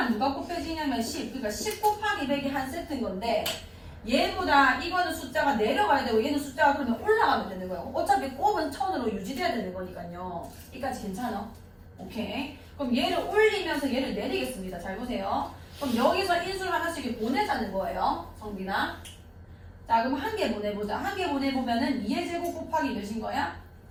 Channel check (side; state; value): both; identical; correlation 1.00